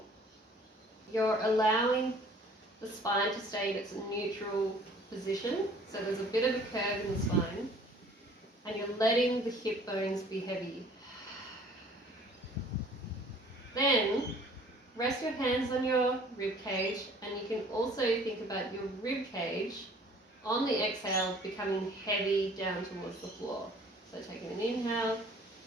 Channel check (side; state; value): both; normal; correlation 0.53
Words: you're allowing the spine to stay in its neutral position. So there's a bit of a curve in the spine, and you're letting the hip bones be heavy. Then rest your hands on your rib cage, and you can also think about your rib cage on the exhale becoming heavy down towards the floor. So taking an inhale,